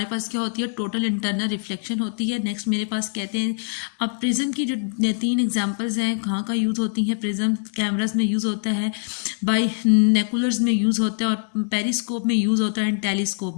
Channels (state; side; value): silent; right; digital silence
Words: पास क्या होती है, टोटल इंटरनल रिफ्लेक्शन होती है। नेक्स्ट मेरे पास कहते हैं, अब प्रिज्म की जो 3 एग्जांपल्स हैं कहाँ का यूज़ होती हैं। प्रिज्म कैमरास में यूज़ होता है, बाई नेकुलर्स में यूज़ होता है, और पेरिस्कोप में यूज़ होता है, एंड टेलीस्कोप